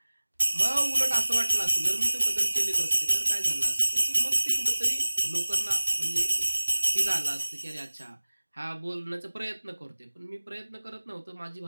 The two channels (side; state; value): both; inverted; correlation -1.00